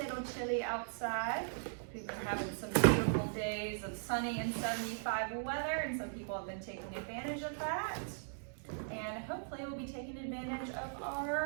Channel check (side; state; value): left; silent; digital silence